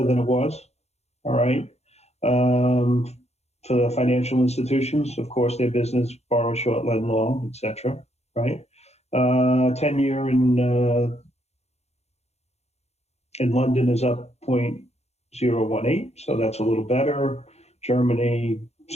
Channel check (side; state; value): right; late; 0.31 ms